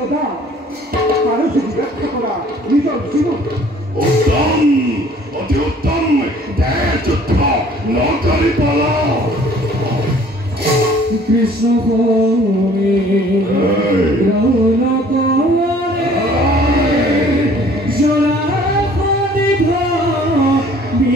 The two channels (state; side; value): normal; both; correlation 0.54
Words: পাৰো যদি ৰক্ষা কৰা নিজৰ জীৱন উত্তম অতি উত্তম দেহ যুদ্ধ নকৰি পলা কৃষ্ণ হরে রৌন করে জোড়া খনিভ